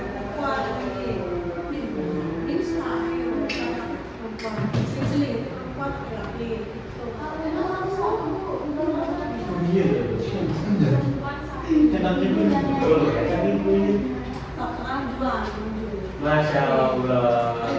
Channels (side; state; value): both; identical; correlation 1.00